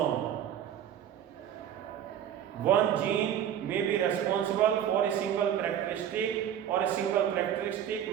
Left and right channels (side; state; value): left; quieter; 9.8 dB